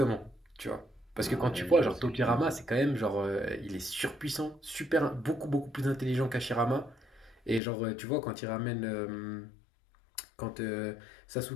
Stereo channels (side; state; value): right; drops out; at 7.6 s